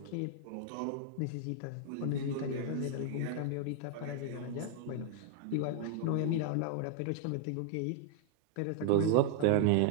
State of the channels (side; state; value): both; different; correlation 0.00